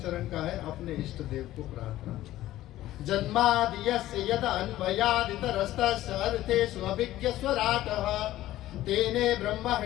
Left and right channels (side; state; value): right; quieter; 14.8 dB